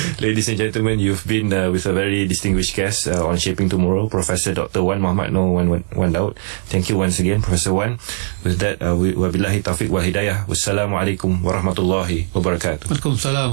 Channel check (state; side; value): silent; left; digital silence